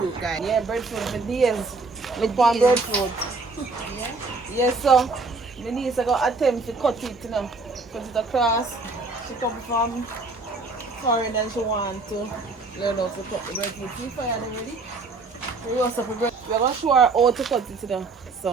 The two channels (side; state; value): left; quieter; 3.7 dB